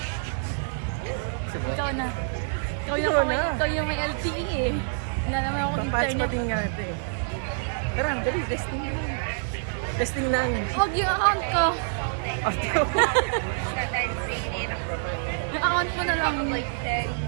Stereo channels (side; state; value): left; silent; digital silence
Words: Sige. Ikaw na. Ikaw yung may LTE eh. Wala naman akong Papatch internet. pati nga ito eh. Tara, dali, testing lang. Testing lang. Huwag yung account ko. Audio. Yung account mo na lang.